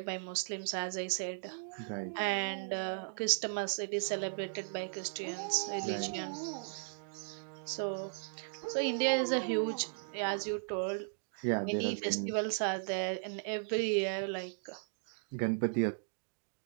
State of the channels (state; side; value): silent; left; digital silence